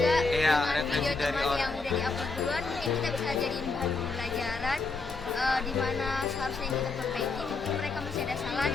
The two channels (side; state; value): right; quieter; 4.0 dB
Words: Iya, dengan referensi video dari teman orang. yang udah diupload duluan, mungkin kita bisa jadiin bahan pembelajaran di mana seharusnya yang kita perbaiki mungkin mereka masih ada salah